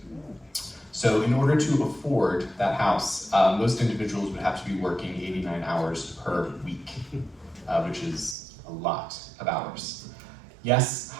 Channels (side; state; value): left; drops out; at 8.3 s